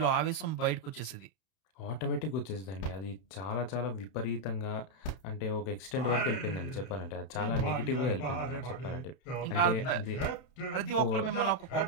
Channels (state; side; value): late; right; 31 ms